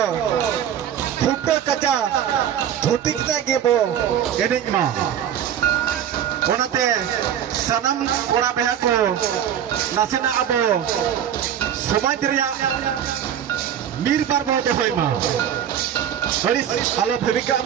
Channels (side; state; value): left; quieter; 9.8 dB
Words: फुटे कचा धोती कता गेबो एनेज मा ओनाते सानाम कोड़ा बेहा को नासेना अबो समाज रिया निर्बार बो देहोय मा हरिस आलो भेबिका